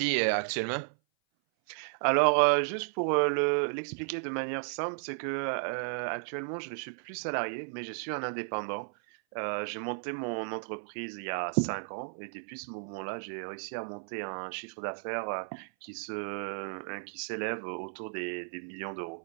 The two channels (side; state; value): left; silent; 55 dB below the other